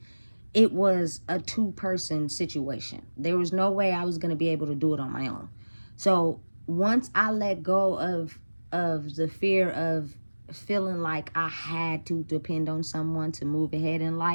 it was a two-person situation. There was no way I was going to be able to do it on my own. So once I let go of the fear of feeling like I had to depend on someone to move ahead in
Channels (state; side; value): inverted; both; correlation -1.00